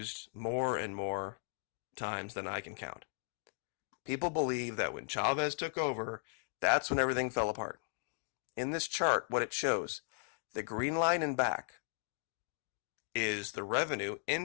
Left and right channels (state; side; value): silent; right; digital silence